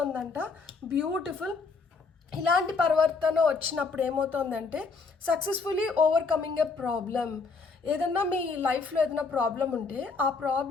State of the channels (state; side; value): quieter; right; 4.5 dB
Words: బ్యూటిఫుల్. ఇలాంటి పరివర్తన వచ్చినప్పుడు ఏమవుతుందంటే సక్సెస్ఫుల్లీ ఓవర్కమింగ్ ఎ ప్రాబ్లం. ఏదన్నా మీ లైఫ్లో ఏదైనా ప్రాబ్లం ఉంటే ఆ